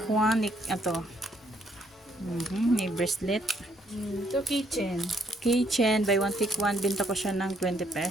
one. Ito. May bracelet. Ito kitchen. Keychain, buy one take one. Binta ko siya ng 20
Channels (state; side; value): normal; both; correlation 0.69